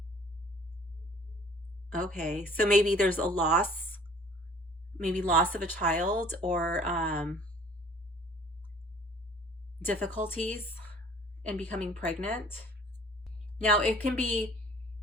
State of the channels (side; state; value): both; normal; correlation 0.53